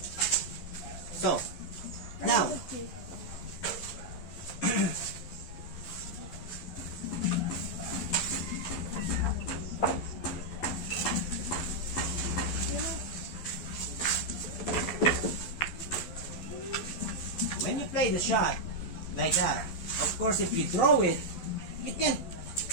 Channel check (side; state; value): right; late; 12 ms